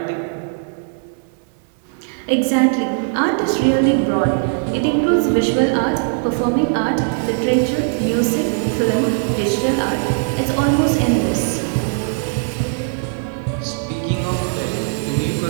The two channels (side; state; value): left; silent; digital silence